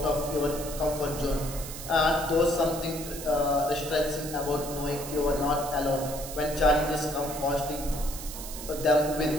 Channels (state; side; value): noise; right; hiss, 10 dB below the sound